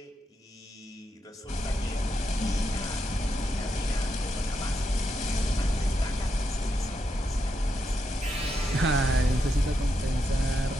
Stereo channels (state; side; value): normal; both; correlation 0.83